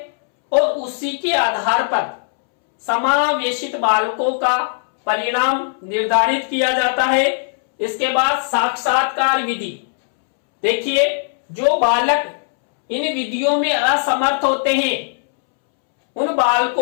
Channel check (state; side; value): silent; right; 67 dB below the other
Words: और उसी के आधार पर समावेशित बालकों का परिणाम निर्धारित किया जाता है। इसके बाद साक्षात्कार विधि। देखिए, जो बालक इन विधियों में असमर्थ होते हैं उन